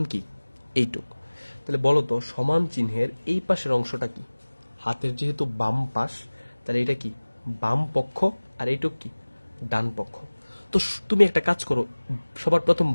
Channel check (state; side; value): inverted; both; correlation -1.00